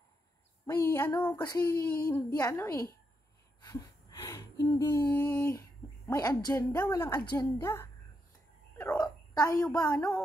May kasi hindi hindi may agenda, walang agenda. Pero tayo ba,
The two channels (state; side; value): normal; both; correlation 0.82